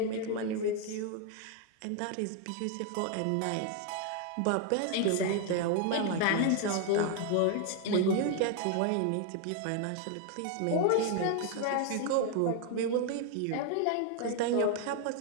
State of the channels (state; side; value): different; both; correlation 0.00